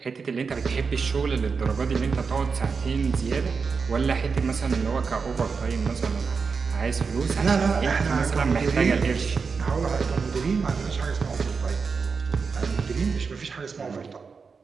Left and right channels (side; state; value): left; quieter; 5.2 dB